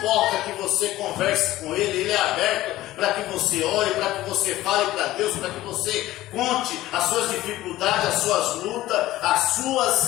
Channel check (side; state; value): right; quieter; 15.9 dB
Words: que você converse com Ele é aberto para que você ore, para que você fale para Deus, para que você conte as suas dificuldades, as suas lutas, as